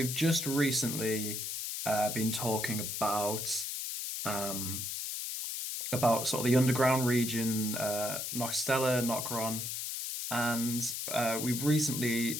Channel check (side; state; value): left; noise; hiss, 4 dB below the sound